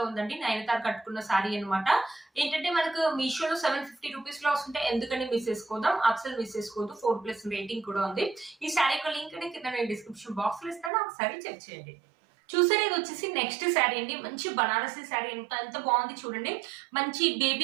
ఉందండి నయనతార కట్టుకున్న శారీ అనమాట. ఏంటంటే మనకు మీషోలో 750 రూపీస్ లో వస్తుంటే ఎందుకని మిస్ చేసుకోదాం, అసలు మిస్ చేసుకోవద్దు. 4+ రేటింగ్ కూడా ఉంది. ఈ శారీ యొక్క లింక్ కింద నేను డిస్క్రిప్షన్ బాక్స్ లో ఇస్తాను, ఒకసారి చెక్ చేయండి. చూసారు, ఇది వచ్చేసి నెక్స్ట్ శారీ అండి. మంచి బనారసి శారీ ఎంత బాగుంది చూడండి. మంచి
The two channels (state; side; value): drops out; left; at 10.9 s